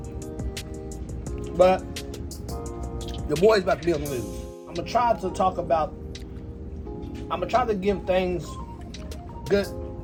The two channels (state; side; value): identical; both; correlation 1.00